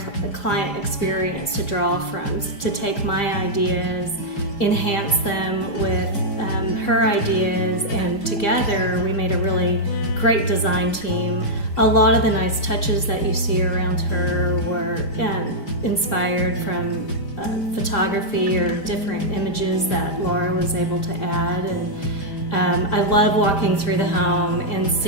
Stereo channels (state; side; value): late; right; 5.0 ms